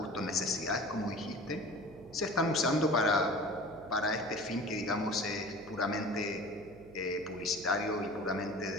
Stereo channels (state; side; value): noise; right; hum, 21 dB below the sound